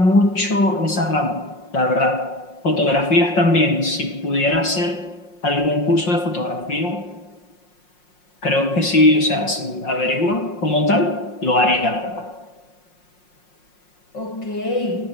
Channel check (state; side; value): late; right; 5.6 ms